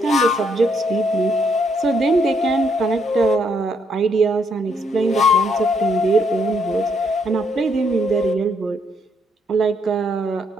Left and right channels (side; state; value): both; normal; correlation 0.73